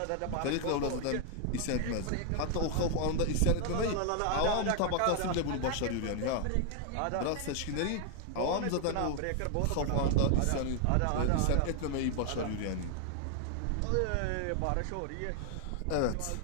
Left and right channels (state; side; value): different; both; correlation 0.00